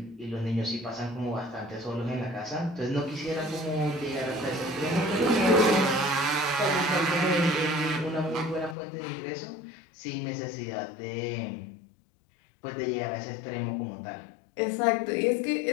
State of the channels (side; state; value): right; drops out; at 8.8 s